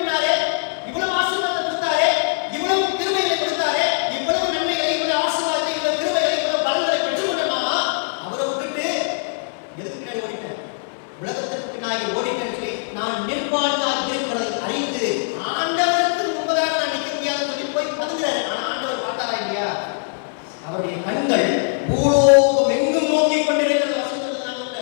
இவ்வளவு ஆசீர்வாதத்தை கொடுத்தாரே, இவ்வளவு கிருபைகளை கொடுத்தாரே, இவ்வளவு நன்மைகளை, இவ்வளவு ஆசீர்வாதத்தை, இவ்வளவு கிருபைகளை, இவ்வளவு பலன்களை பெற்றுக்கொள்ளலாமா? அவரை விட்டுட்டு எதுக்கு பின்னாடி ஓடிட்டேன்? உலகத்துக்கு பின்னாடி ஓடிட்டேன்னு சொல்லி நான் நிர்வாணியாக இருக்கிறதை அறிந்து ஆண்டவருக்கு முன்பதாக நான் நிற்க முடியாதுன்னு சொல்லி போய் பதுங்குறாரு. ஆனா ஆண்டவர் பார்த்தாரா இல்லையா? அவருடைய கண்கள் பூலோகம் எங்கும் நோக்கி கொண்டிருக்கிறது. வசனத்தில் நான்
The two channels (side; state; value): right; silent; digital silence